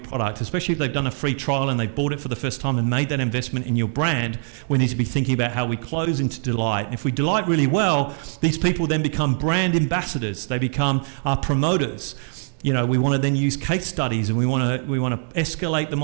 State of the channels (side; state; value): left; silent; digital silence